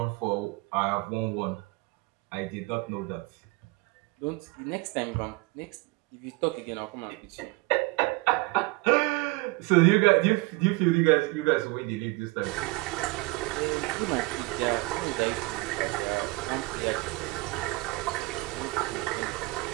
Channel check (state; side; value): quieter; left; 23.3 dB